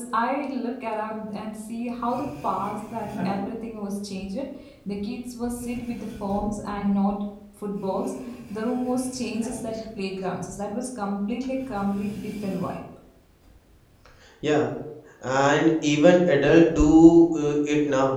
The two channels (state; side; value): identical; both; correlation 1.00